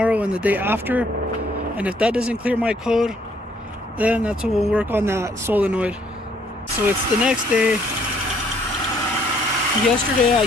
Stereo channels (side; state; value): both; normal; correlation 0.65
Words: and the day after. And if that doesn't clear my code, then that's when we'll work on that solenoid. So it's the next day. Yesterday I